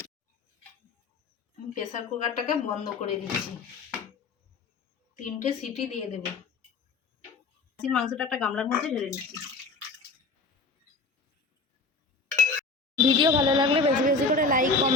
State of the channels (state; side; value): quieter; right; 4.0 dB